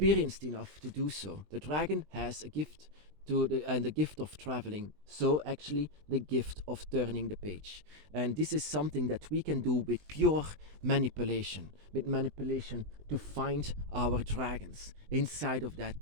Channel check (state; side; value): late; left; 20 ms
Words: enough to do so. The dragon has a gift and the gift of traveling, so actually the gift of turning the page. And this is something that we can do with pure manipulation, to find our dragons inside of that